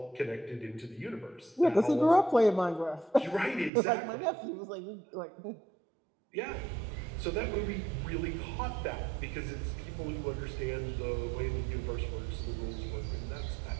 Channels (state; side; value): drops out; left; at 3.7 s